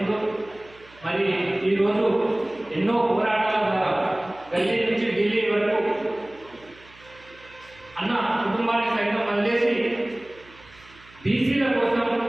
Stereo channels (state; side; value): noise; right; hum, 25 dB below the sound